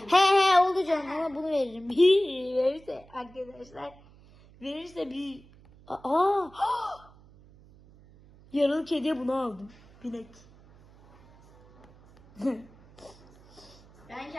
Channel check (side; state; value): right; noise; hum, 25 dB below the sound